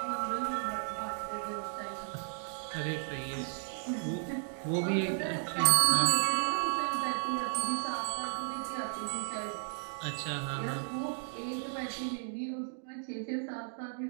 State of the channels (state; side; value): silent; left; digital silence